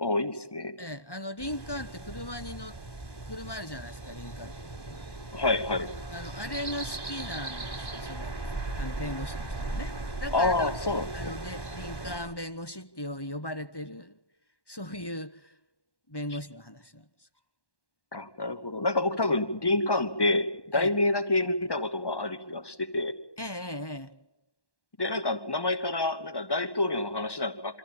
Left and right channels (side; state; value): right; late; 1.1 ms